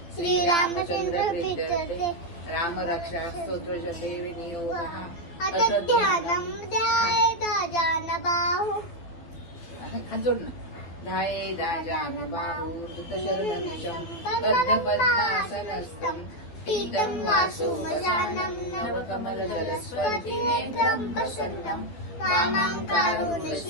श्रीरामचंद्र प्रीत्यर्थे राम रक्षा स्तोत्र जपे विनियोगः अथ ध्यानं ध्यायेदाजानबाहु हात जोड ना ध्यायेदाजानबाहु धृतशरदनिशं बद्धपद्मासनस्थं पीतं वासुमयानं नवकमलजलस्पर्शिनेत्रं प्रसन्नं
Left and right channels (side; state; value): right; late; 12 ms